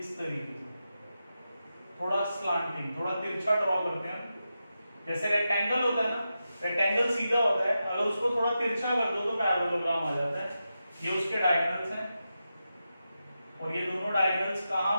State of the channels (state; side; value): inverted; both; correlation -0.90